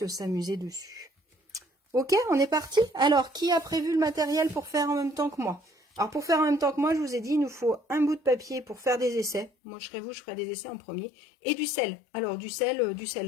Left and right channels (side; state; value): right; drops out; at 9.5 s